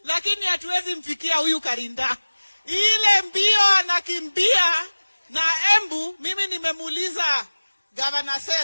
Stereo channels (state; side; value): inverted; both; correlation -1.00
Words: lakini hatuwezi mfikia huyu Karinda. Ile mbio anakimbia na Embu, mimi nimemuuliza Governor